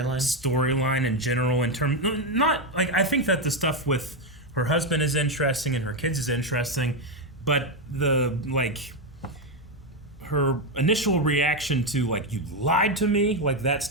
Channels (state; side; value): normal; both; correlation 0.07